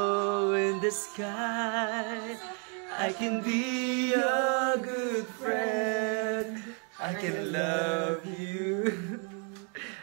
in the sky, I can be your good friend. I can love you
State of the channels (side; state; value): left; quieter; 39.6 dB